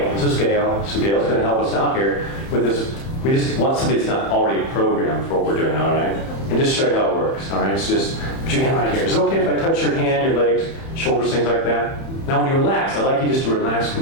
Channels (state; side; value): late; right; 30 ms